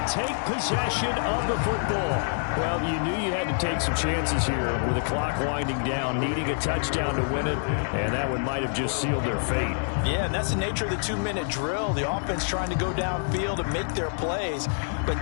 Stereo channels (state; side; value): silent; right; digital silence